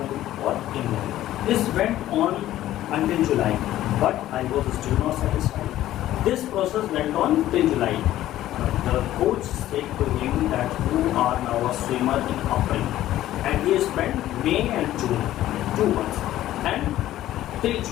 or in the pool. This went on until July, but I was still not satisfied. This process went on till July. The coach said to him that you are now a swimmer in April, and he spent May and June, 2 months, and till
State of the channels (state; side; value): quieter; right; 13.8 dB